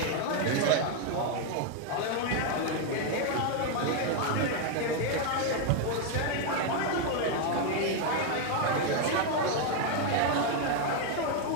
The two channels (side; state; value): both; different; correlation 0.01